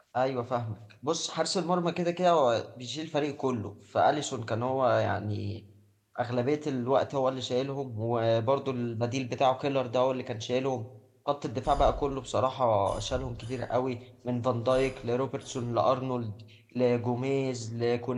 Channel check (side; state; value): both; identical; correlation 1.00